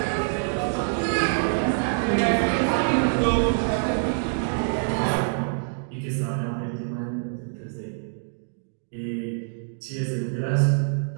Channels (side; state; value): left; silent; digital silence